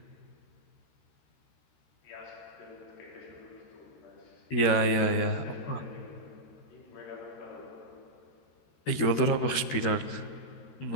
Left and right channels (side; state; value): right; late; 13 ms